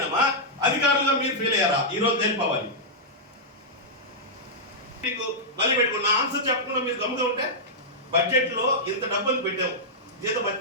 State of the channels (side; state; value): both; normal; correlation -0.09